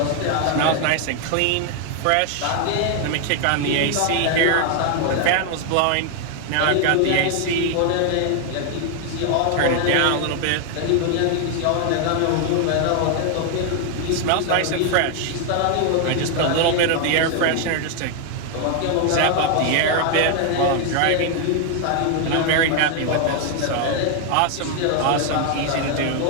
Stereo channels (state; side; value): different; both; correlation 0.00